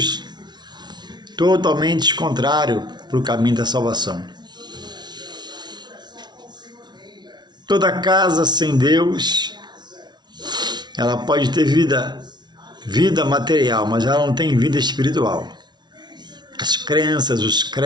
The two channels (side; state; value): left; late; 0.20 ms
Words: totalmente contrários para o caminho da salvação. Toda casa sem Deus, ela pode ter vida material, mas ela não tem vida espiritual. As crenças, os